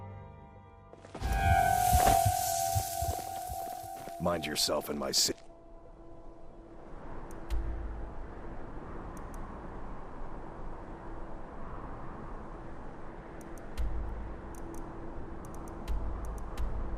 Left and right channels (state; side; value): identical; both; correlation 1.00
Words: Mind yourself in my city.